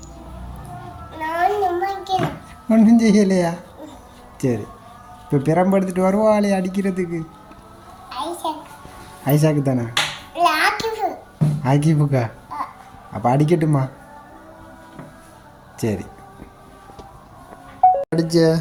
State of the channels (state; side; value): identical; both; correlation 1.00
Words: ஒன்றும் செய்யலையா? சரி, இப்போ பிரம்பு எடுத்துட்டு வருவாளே அடிக்கிறதுக்கு. ஐசாக்கு தானே? ஆக்கிப்புக்கா? அப்போ அடிக்கட்டுமா? சரி. அடிச்ச